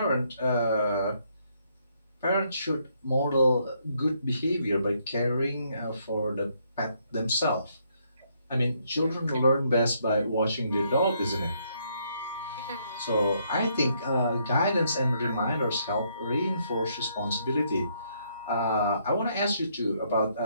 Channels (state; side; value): inverted; both; correlation -0.72